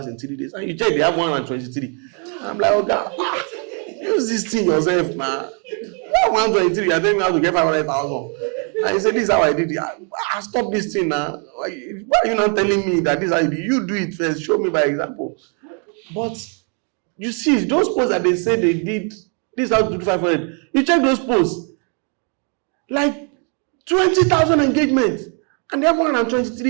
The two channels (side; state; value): left; quieter; 39.6 dB